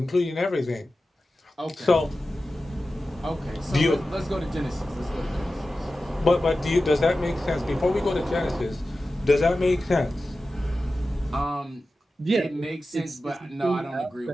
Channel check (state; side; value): normal; both; correlation 0.94